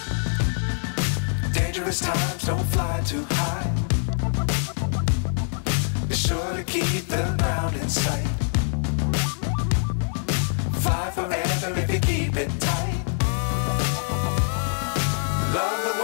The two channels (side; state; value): right; silent; 60 dB below the other